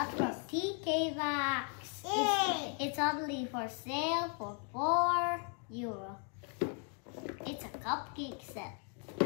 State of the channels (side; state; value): right; quieter; 38.9 dB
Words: from TK Maxx. It's only for sale for €4. It's a cupcake set,